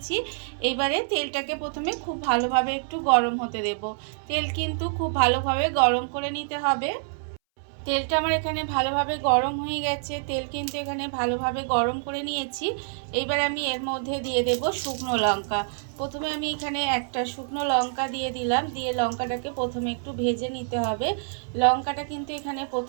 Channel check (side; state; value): left; silent; 61 dB below the other